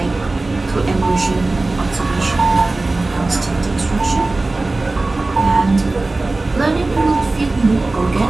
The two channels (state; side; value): quieter; left; 3.2 dB